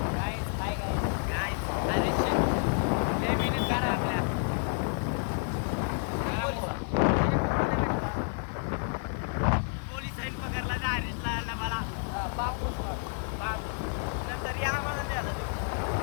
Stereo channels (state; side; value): silent; right; 58 dB below the other